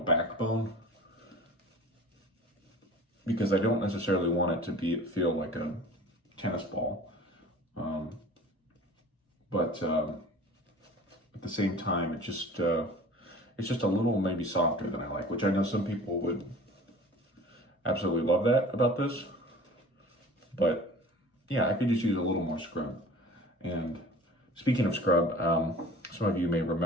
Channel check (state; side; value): normal; both; correlation 0.43